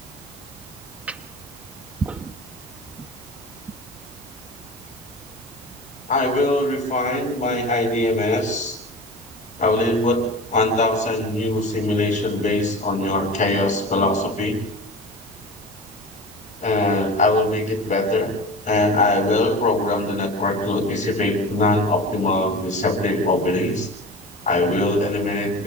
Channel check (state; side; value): normal; both; correlation 0.33